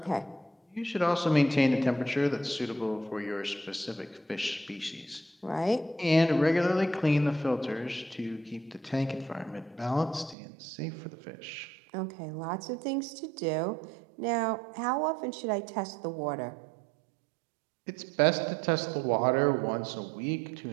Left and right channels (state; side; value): drops out; left; at 10.4 s